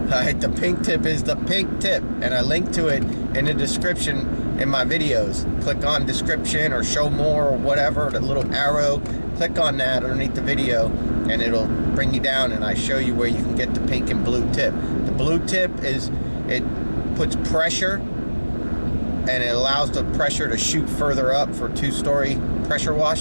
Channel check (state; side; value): inverted; both; correlation -1.00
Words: the pink tip is the pink tip, and I link to it in the description in my videos. Click on description or show more or whatever, the little arrow, click on that underneath the video and it'll bring you down, and I show you where you can get the pink and blue tip. The blue tip is, it puts pressure and it allows the pressure to shoot further up for 2-story pressure